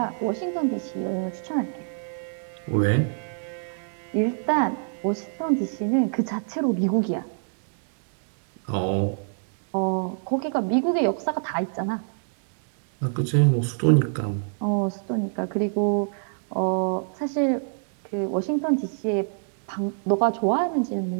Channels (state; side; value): silent; left; digital silence